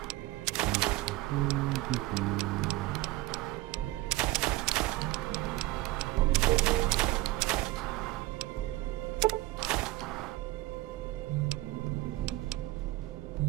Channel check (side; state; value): left; quieter; 18.3 dB